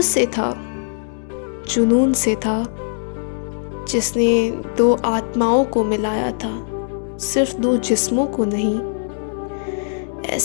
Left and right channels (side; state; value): right; silent; digital silence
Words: से था, जुनून से था, जिसने दो आत्माओं को मिलाया था, सिर्फ दो जिस्मों को नहीं।